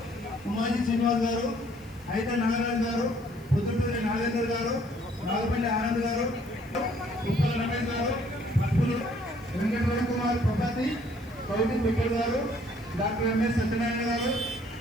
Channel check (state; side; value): noise; left; hiss, 28 dB below the sound